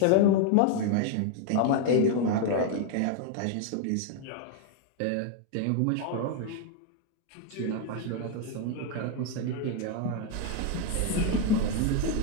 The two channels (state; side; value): different; both; correlation 0.01